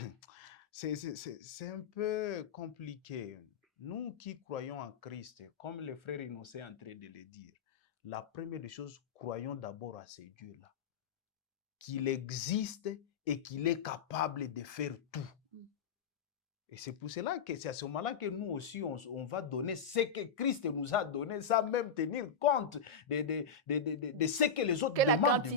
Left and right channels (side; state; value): right; quieter; 5.4 dB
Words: c'est un peu compliqué. Nous qui croyons en Christ, comme le frère Innocent est en train de le dire, la première des choses, croyons d'abord à ce Dieu-là, qu'il existe et qu'il est capable de faire tout. Et c'est pour cela que c'est à ce moment-là que nous aussi, on va donner ce que Christ nous a donné, sans même tenir compte de ce que les autres Que la demandent de nous.